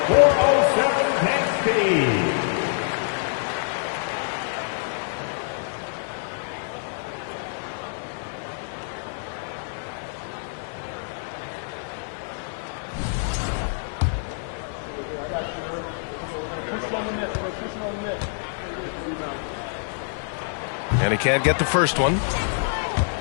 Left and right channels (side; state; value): right; silent; 61 dB below the other